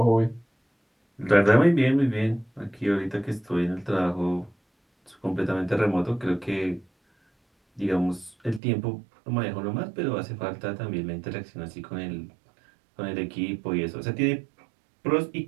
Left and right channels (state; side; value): drops out; left; at 8.6 s